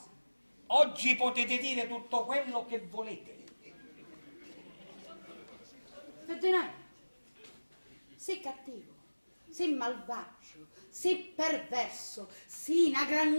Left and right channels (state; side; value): inverted; both; correlation -1.00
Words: Oggi potete dire tutto quello che volete. Ferdinando, sei cattivo, sei malvagio, sei perverso, sei una